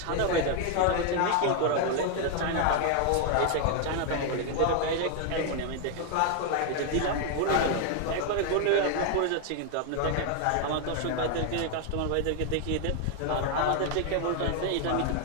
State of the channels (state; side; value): different; both; correlation 0.00